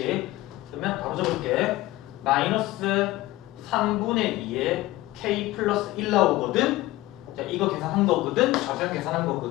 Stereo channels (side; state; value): right; quieter; 17.8 dB